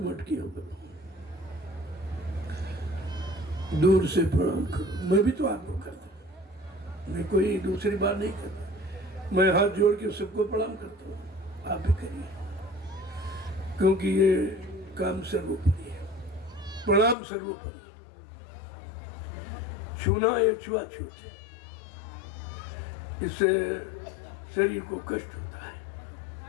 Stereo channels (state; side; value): drops out; right; at 17.2 s